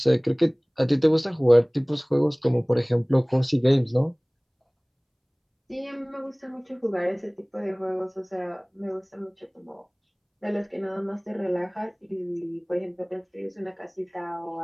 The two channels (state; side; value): identical; both; correlation 1.00